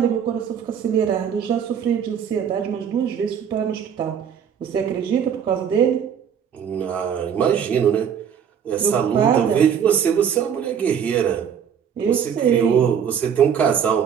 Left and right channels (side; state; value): left; quieter; 8.0 dB